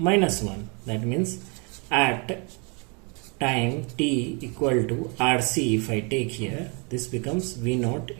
1. That means at time t equal to RC, if I take here, this becomes V naught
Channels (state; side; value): quieter; left; 34.1 dB